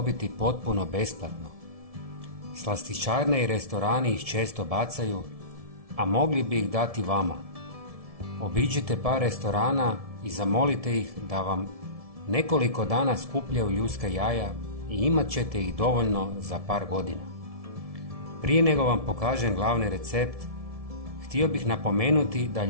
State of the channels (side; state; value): left; late; 1.7 ms